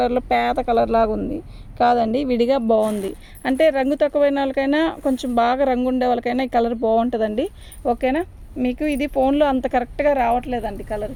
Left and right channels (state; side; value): identical; both; correlation 1.00